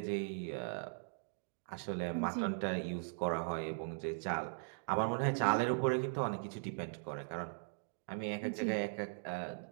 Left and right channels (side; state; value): left; silent; digital silence